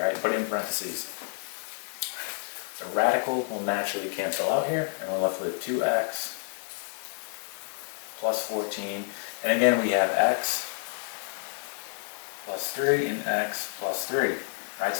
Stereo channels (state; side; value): silent; right; digital silence